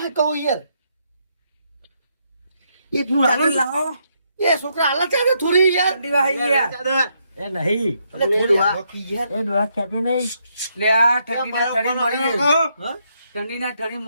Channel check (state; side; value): inverted; both; correlation -0.76